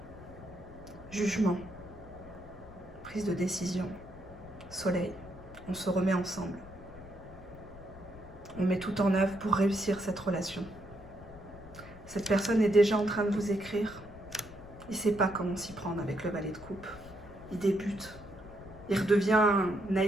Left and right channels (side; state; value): left; noise; rumble, 18 dB below the sound